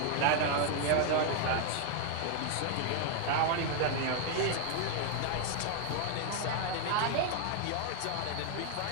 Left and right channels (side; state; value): both; different; correlation 0.01